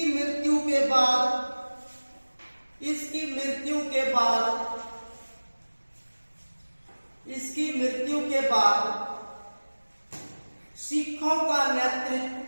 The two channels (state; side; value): inverted; both; correlation -1.00